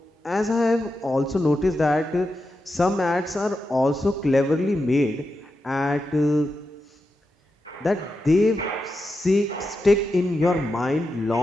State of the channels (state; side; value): normal; both; correlation 0.88